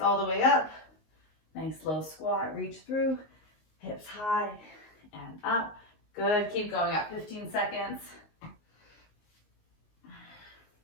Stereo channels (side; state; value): right; late; 19 ms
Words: the way up. Nice low squat, reach through, hips high and up. Good, keep going up, 15 seconds.